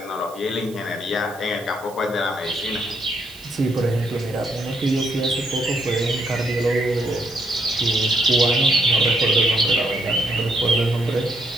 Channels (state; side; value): noise; right; hiss, 21 dB below the sound